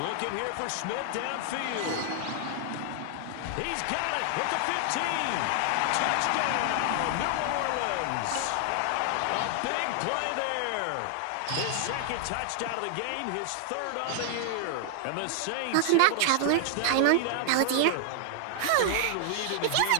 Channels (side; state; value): both; different; correlation 0.00